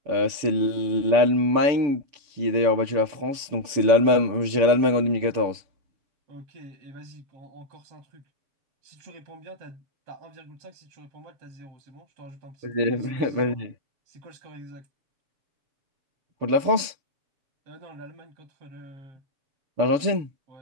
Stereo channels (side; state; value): left; late; 6.8 ms